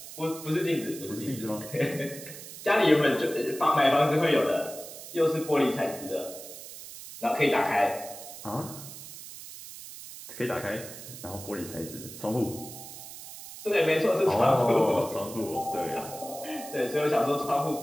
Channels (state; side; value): noise; right; hiss, 13 dB below the sound